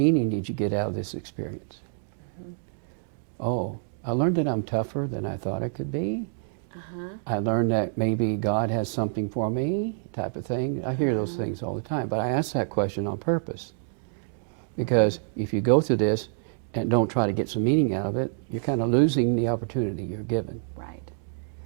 did you get out of this experience? Oh, I learned that I'm tougher than I thought I could be. I learned that maybe God has something for me, type of thing. I hear those things all the time, but I ask that question on purpose. Because if you go through this and don't try to get some meaning out of it, you're kind of losing the opportunity you're given. Right.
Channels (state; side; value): silent; left; digital silence